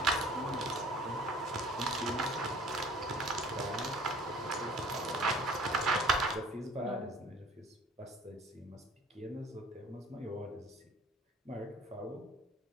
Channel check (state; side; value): normal; both; correlation 0.51